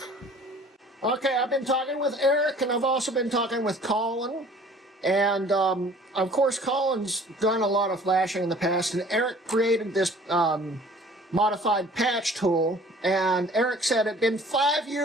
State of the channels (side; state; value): both; normal; correlation 0.51